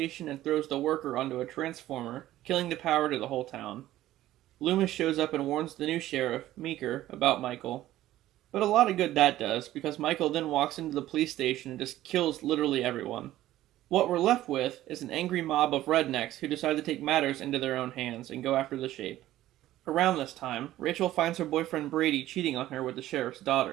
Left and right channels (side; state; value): left; quieter; 14.5 dB